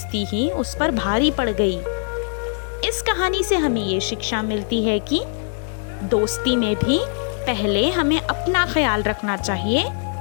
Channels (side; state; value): right; silent; digital silence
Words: ही उस पर भारी पड़ गई। इस कहानी से हमें ये शिक्षा मिलती है कि दोस्ती में भी पहले हमें अपना ख्याल रखना चाहिए,